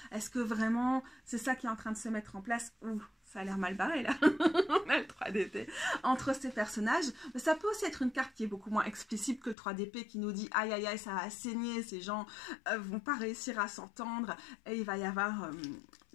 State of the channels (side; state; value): right; drops out; at 9.6 s